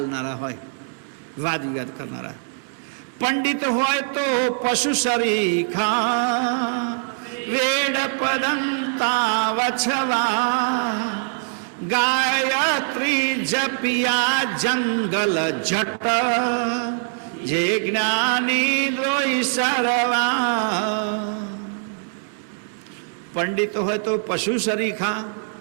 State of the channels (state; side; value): silent; left; digital silence